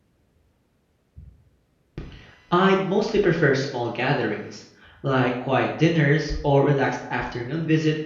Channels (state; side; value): identical; both; correlation 1.00